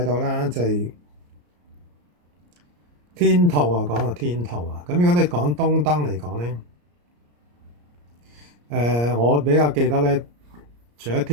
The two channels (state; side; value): late; left; 34 ms